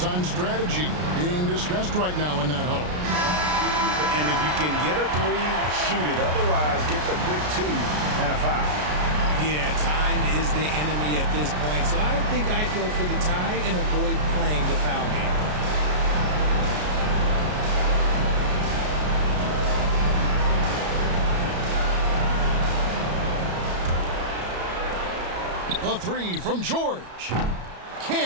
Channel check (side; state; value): left; late; 33 ms